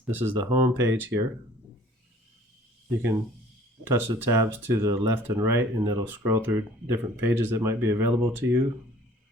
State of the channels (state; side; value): normal; both; correlation 0.53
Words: This is the home page here. You can touch the tabs to the left and right and it'll scroll through different pages that might be available to you.